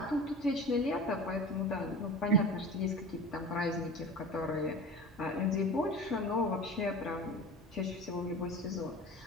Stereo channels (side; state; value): both; normal; correlation 0.35